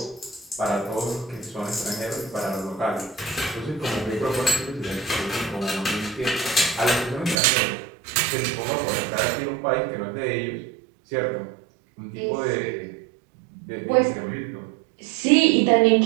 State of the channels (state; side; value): drops out; left; at 7.4 s